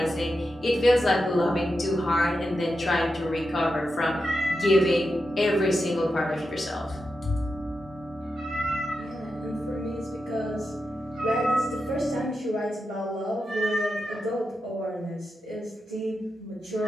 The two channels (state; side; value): normal; both; correlation 0.88